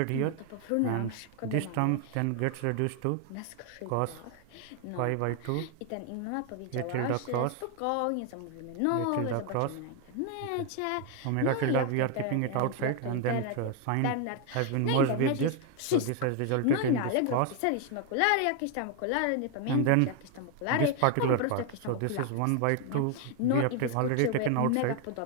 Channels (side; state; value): both; different; correlation 0.01